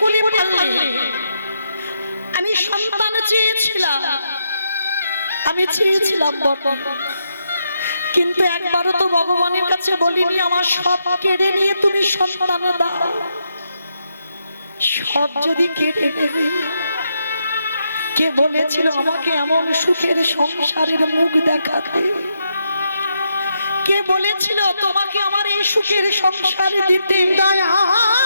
করে পারলে? আমি সন্তান চেয়েছিলাম, আমি চেয়েছিলাম বটে, কিন্তু একবারও তো ভগবানের কাছে বলিনি আমার সব কেড়ে নিয়ে তুমি সন্তান দাও। সব যদি কেড়ে নেবে, কে বলেছিল আমাকে এমন সুখের সংসারের মুখ দেখাতে? কে বলেছিল তোমাকে আমার এই সুখের সংসারে দিতে?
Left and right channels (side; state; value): both; inverted; correlation -0.81